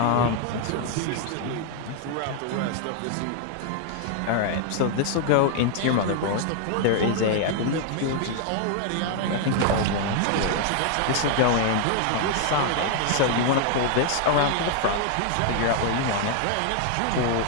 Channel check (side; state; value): both; different; correlation 0.00